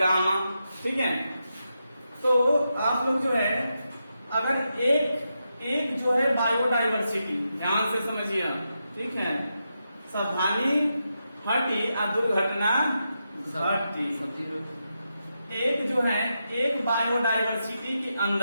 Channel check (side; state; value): both; inverted; correlation -0.86